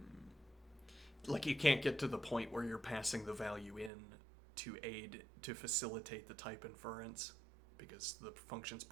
like you can't get to the point where you're passing the value in to facilitate the type inference because the function's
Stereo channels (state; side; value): drops out; left; at 3.9 s